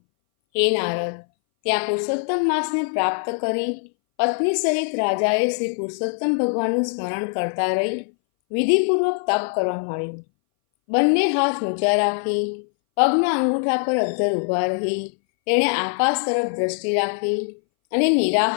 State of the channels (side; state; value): right; silent; 61 dB below the other